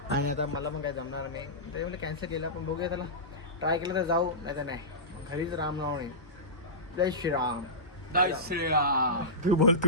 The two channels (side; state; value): both; normal; correlation -0.18